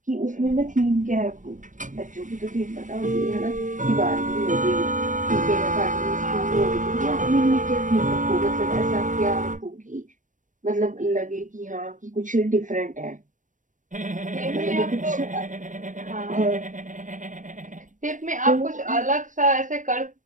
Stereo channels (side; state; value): left; late; 0.37 ms